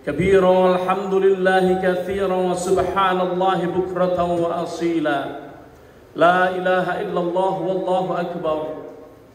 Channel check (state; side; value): identical; both; correlation 1.00